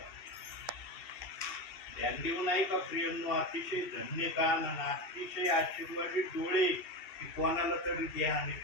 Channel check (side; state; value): right; late; 2.7 ms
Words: ध्यान देऊ नाही का प्रियांनो? अतिशय धन्य कान आणि अतिशय आशीर्वादित डोळे की कोणाला तरी ध्यान